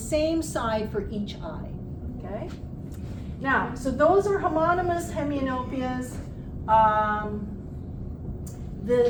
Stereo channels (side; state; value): both; identical; correlation 1.00